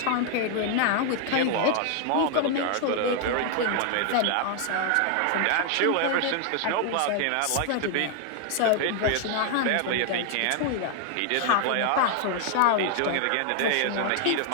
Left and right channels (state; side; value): different; both; correlation 0.00